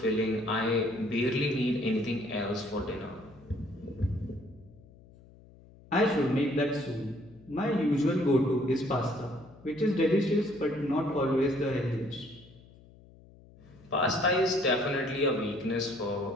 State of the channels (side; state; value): left; noise; hum, 24 dB below the sound